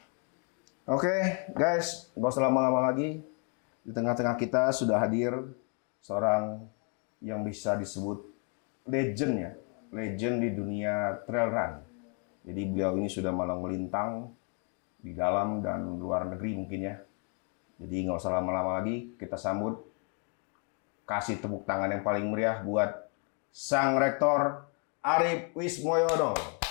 Oke, guys, nggak usah lama-lama lagi. Di tengah-tengah kita sudah hadir seorang yang bisa disebut legend ya, legend di dunia trail run. Jadi beliau ini sudah malang melintang di dalam dan luar negeri mungkin ya. Jadi nggak usah lama-lama lagi, kita sambut, kasih tepuk tangan yang paling meriah buat Sang Rektor Arif Wismoyono.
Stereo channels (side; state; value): right; quieter; 39.3 dB